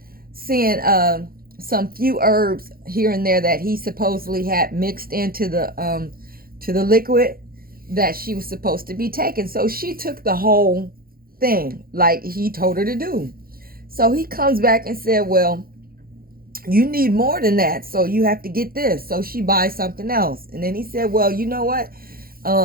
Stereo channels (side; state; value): left; late; 0.43 ms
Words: seeing some few herbs here and there that he supposedly had mixed into the liquid that she was supposed to be taking. So she took the whole thing like he told her to do. So he comes back and said, well, you need more than that, so you have to get this. So she buys something else. And then he said, well, you know what?